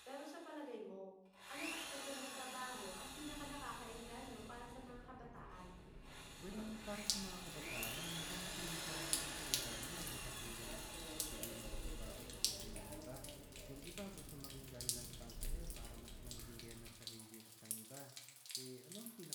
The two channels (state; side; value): identical; both; correlation 1.00